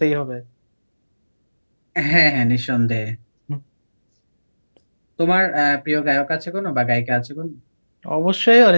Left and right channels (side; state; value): both; inverted; correlation -1.00